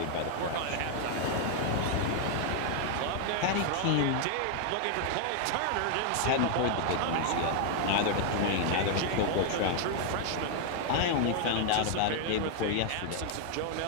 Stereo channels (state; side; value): different; both; correlation 0.00